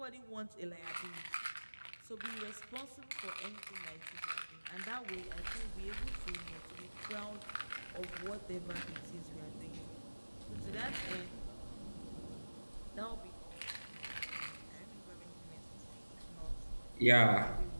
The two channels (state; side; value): inverted; both; correlation -1.00